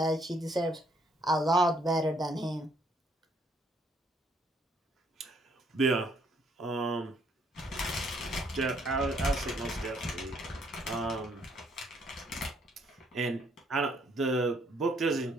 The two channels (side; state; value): both; normal; correlation 0.68